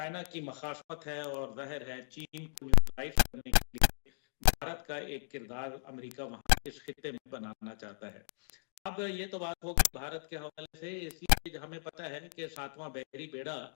की मखाफत है और ज़ाहिर है चीन को न्यूट्रलाइज करने के लिए भारत का एक किरदार अमेरिका वहां इस खित्ते में बनाना चाहता है। अब ये तो बात होगी भारत के हवाले से, इसलिए हमें पता है कि 7वां बहरी बेड़ा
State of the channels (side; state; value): right; silent; digital silence